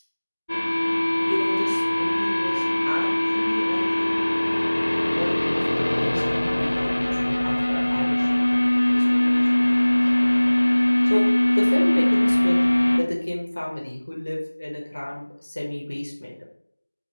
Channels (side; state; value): both; inverted; correlation -1.00